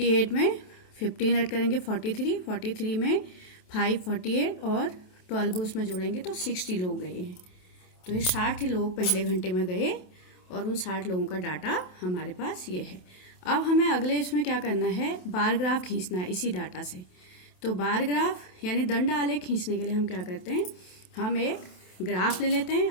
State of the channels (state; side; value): late; right; 28 ms